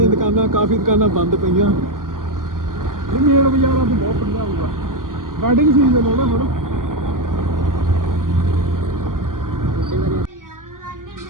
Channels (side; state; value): left; late; 0.90 ms